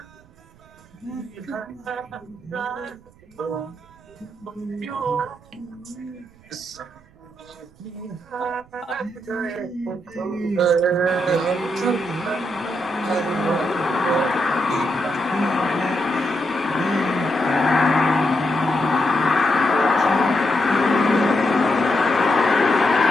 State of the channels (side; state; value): right; noise; rumble, 27 dB below the sound